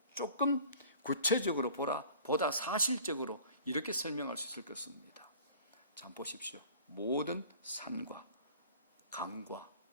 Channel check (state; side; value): inverted; both; correlation -0.46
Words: 조금 구체적으로 보다 사실적으로 이렇게 설명할 수 있을 것입니다. 자, 보십시오. 모든 산과 강과